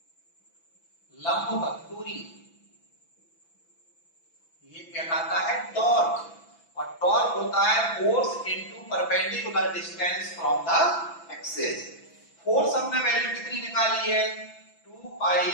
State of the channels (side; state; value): right; late; 6.0 ms